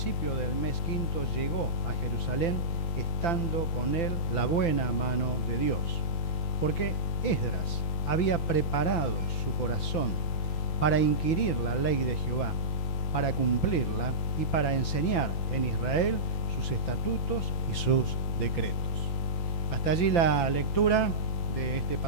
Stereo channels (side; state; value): right; late; 5.9 ms